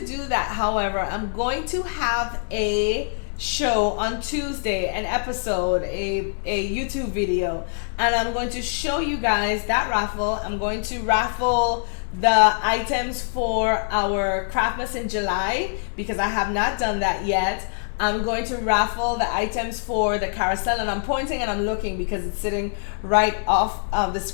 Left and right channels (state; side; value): silent; right; digital silence